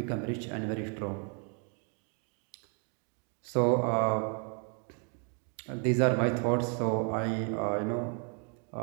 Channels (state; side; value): quieter; left; 39.6 dB